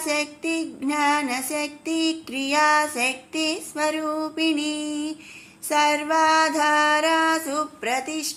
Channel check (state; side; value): identical; both; correlation 1.00